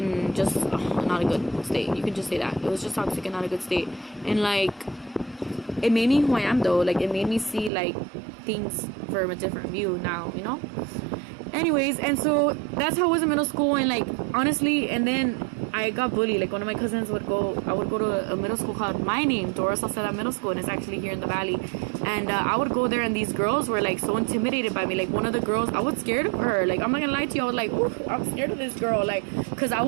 just not a good state. You can just say that it was just toxic and not a good state. And like it made me who I am though. Like it made me see like things from a different view now, you know? Anyways, and so that's how I was in middle school. And like honestly, and then I got bullied. Like one of my cousins would go, I would go to a middle school called my name, Dora Salceda Middle School, and it's actually here in the valley. And I would go there, and these girls were like so intimidated by me. Like one of the girls, I was scared of her. Like I'm not gonna lie to you, I was like, ooh, I'm scared of this girl. Like, cause I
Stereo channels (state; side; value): drops out; left; at 7.7 s